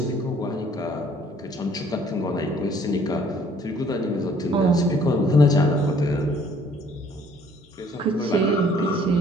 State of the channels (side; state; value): both; normal; correlation 0.59